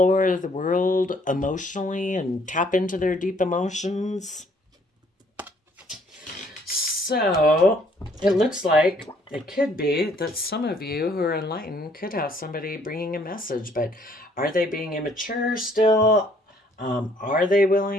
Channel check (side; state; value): both; normal; correlation 0.63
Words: the world emotionally and tap into their deep emotions? So it looks like it could be that some of you who are enlightened could have somebody bringing a message, but are they being immature still? Are they